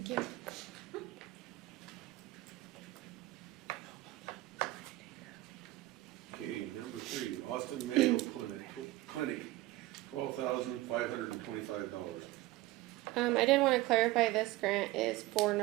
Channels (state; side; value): quieter; left; 18.1 dB